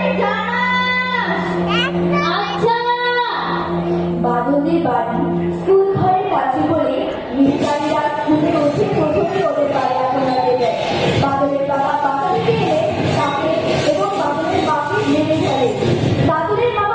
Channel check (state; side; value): identical; both; correlation 1.00